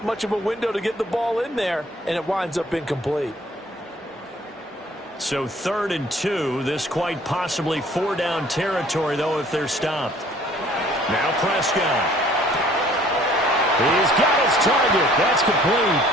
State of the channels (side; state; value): both; normal; correlation 0.56